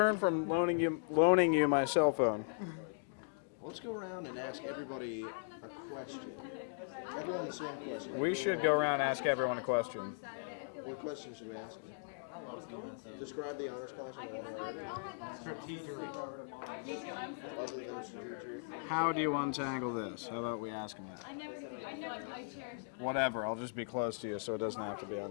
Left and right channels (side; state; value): right; silent; digital silence